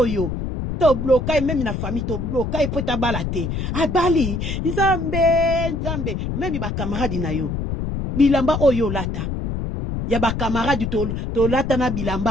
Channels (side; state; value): left; noise; rumble, 3 dB below the sound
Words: yo, to blokai memi na famille, to blokai pota balate, abali, nzambe, memi ba camarade na yo, bilamba oyo lata ya ba camarade to lata na